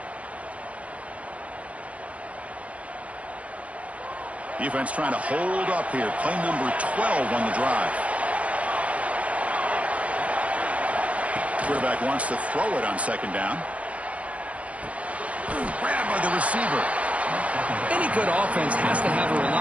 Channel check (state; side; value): late; left; 0.065 ms